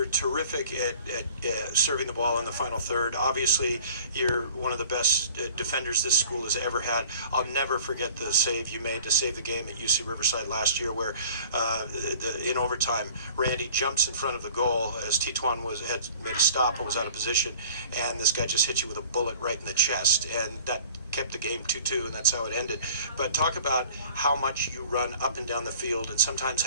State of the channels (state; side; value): inverted; both; correlation -0.48